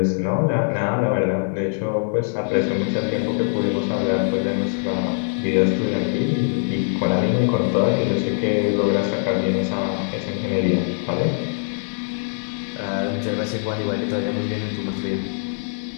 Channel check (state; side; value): silent; right; digital silence